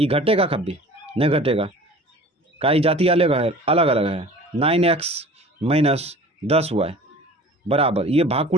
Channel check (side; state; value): both; normal; correlation 0.43